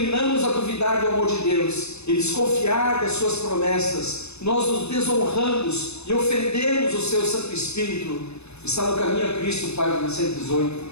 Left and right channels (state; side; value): late; right; 0.80 ms